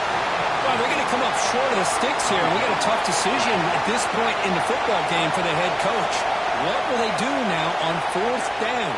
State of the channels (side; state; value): both; identical; correlation 1.00